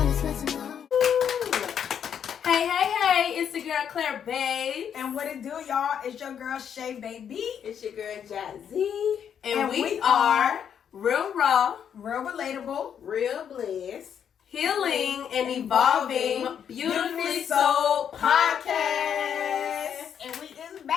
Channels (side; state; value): right; quieter; 8.4 dB